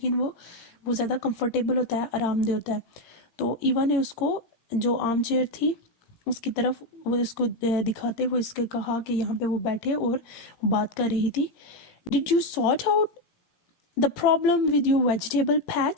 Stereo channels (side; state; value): right; late; 17 ms